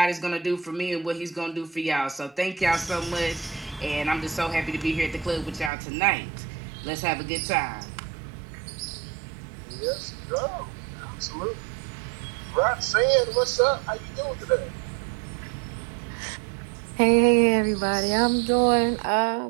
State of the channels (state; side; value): drops out; left; at 5.7 s